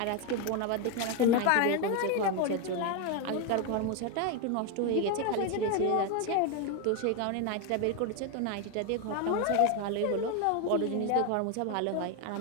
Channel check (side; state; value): both; different; correlation 0.02